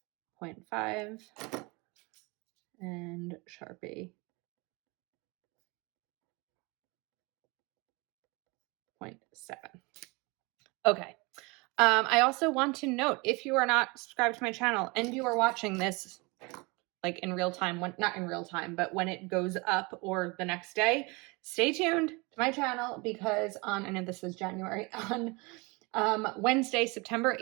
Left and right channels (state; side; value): quieter; left; 27.0 dB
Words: 0.5, and Sharpie, 0.7. Okay. I also want to note, if you are not subscribed to my channel and you are watching this like in real time, not in real time, but when it goes up or the next day, stay tuned to my channel, because I know this is January, on Wednesday, September